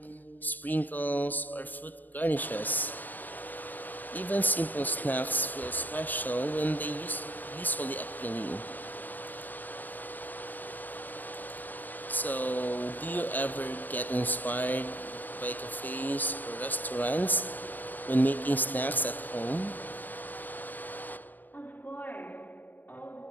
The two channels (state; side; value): late; right; 0.087 ms